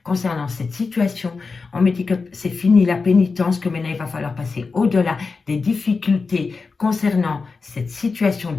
concernant cette situation. On me dit que c'est fini la pénitence, que maintenant il va falloir passer au-delà des difficultés concernant cette situation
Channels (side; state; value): right; quieter; 4.4 dB